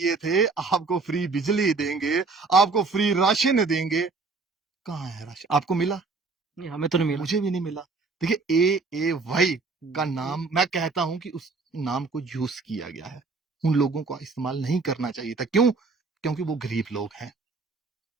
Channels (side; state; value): left; quieter; 4.1 dB